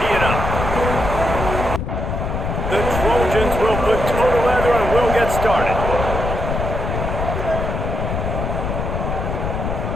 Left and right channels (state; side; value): noise; left; rumble, 2 dB below the sound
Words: it up. The Trojans will put total leather and we'll get started.